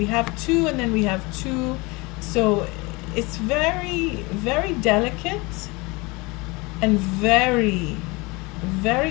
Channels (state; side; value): quieter; right; 25.2 dB